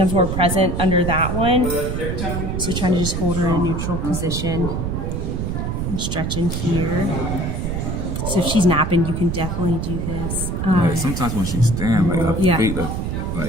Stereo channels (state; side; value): noise; right; rumble, 2 dB below the sound